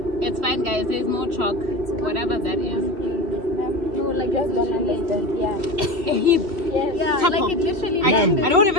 It's fine, guys. There's no chalk. Whatever that is. No, like it's literally a heap. Yeah. A heap. Yeah, like it literally. I don't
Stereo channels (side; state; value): left; late; 3.1 ms